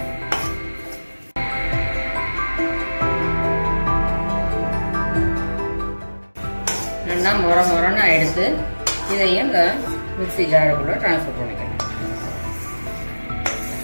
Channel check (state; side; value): inverted; both; correlation -1.00